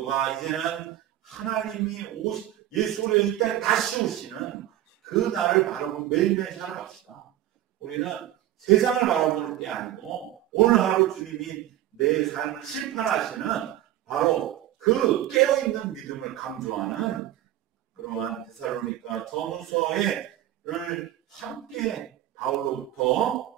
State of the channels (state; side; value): quieter; left; 13.6 dB